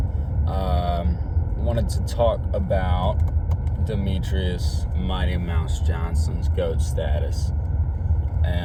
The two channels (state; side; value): identical; both; correlation 1.00